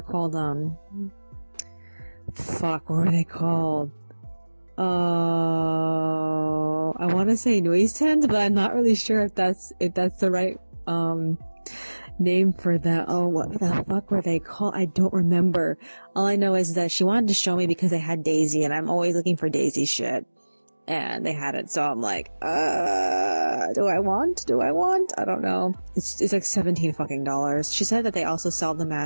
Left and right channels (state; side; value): inverted; both; correlation -1.00